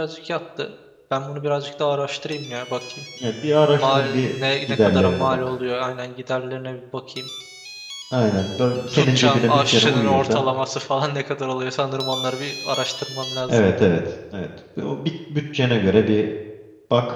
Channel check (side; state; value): both; identical; correlation 1.00